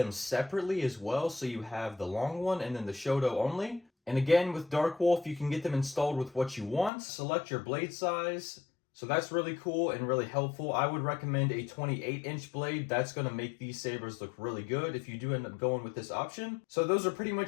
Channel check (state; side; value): drops out; right; at 6.9 s